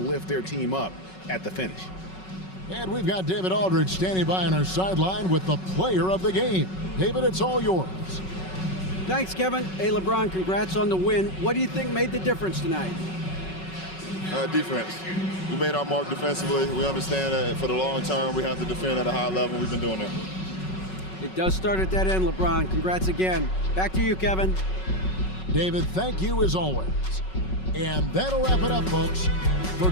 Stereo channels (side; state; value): right; late; 5.4 ms